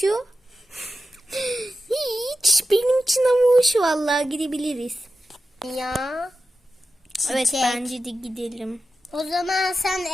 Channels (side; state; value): both; normal; correlation 0.91